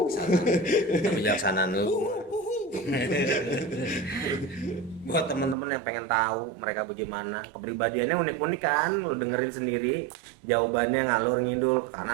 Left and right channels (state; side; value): drops out; left; at 5.6 s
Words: kebijaksanaan lu. Buat teman-teman yang pengen tahu mereka bagaimana, kepribadiannya unik-unik kan, lu dengerin sendiri. Jawabannya ngalur ngidul,